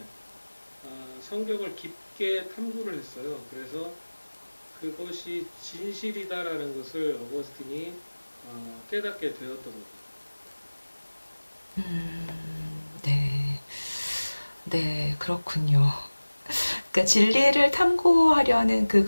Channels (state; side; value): inverted; both; correlation -1.00